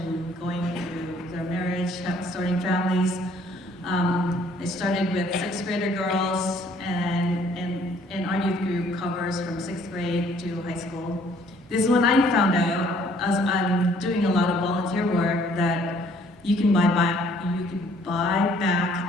going through their marriage, starting families. They started with 6th grader girls, and our youth group covers from 6th grade to high school. This is when I found out, as I'm doing a lot of volunteer work, that you can buy back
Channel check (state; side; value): normal; both; correlation 0.61